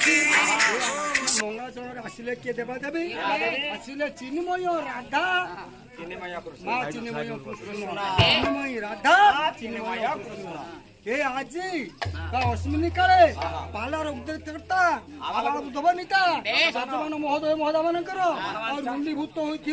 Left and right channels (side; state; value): both; identical; correlation 1.00